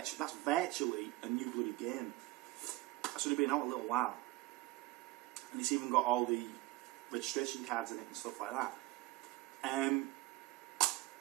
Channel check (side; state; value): left; quieter; 18.7 dB